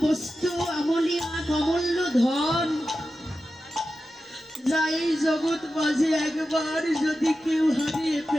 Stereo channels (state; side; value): normal; both; correlation 0.92